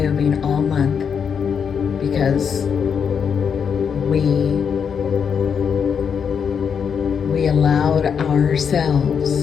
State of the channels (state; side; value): quieter; right; 6.9 dB